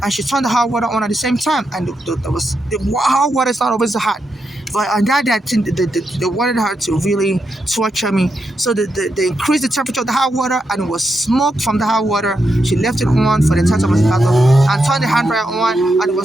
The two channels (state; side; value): normal; both; correlation 0.84